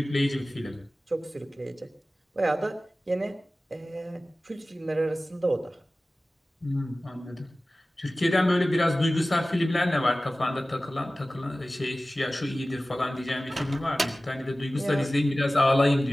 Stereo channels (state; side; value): normal; both; correlation 0.97